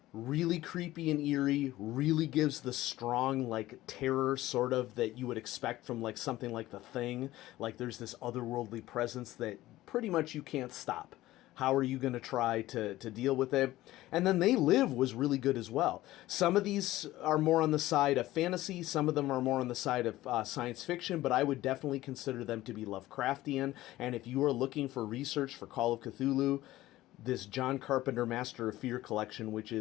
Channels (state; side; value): quieter; right; 16.2 dB